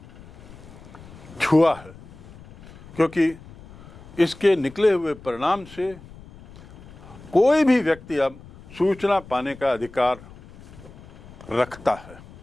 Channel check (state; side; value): noise; left; rumble, 20 dB below the sound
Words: छुआ है, क्योंकि इसके निकले हुए परिणाम से कोई भी व्यक्ति अब सूचना पाने का अधिकार रखता है।